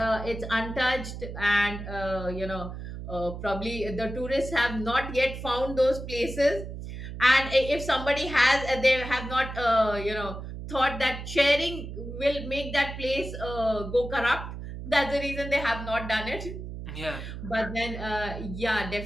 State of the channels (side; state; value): right; noise; hum, 9 dB below the sound